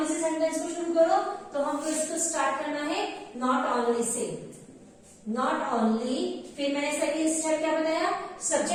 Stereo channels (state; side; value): identical; both; correlation 1.00